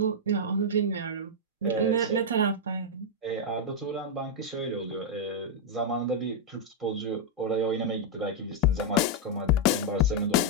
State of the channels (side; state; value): both; normal; correlation -0.03